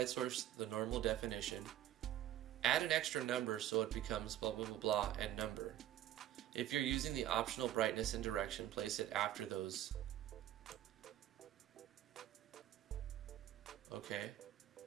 source the normal definition. Add an extra number so it becomes blah blah blah blah and number. If you're using the optional brightness and direction, place it after those. Okay.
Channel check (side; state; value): left; quieter; 12.2 dB